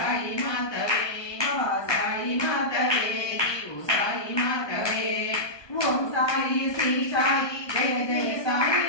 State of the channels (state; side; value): late; right; 1.2 ms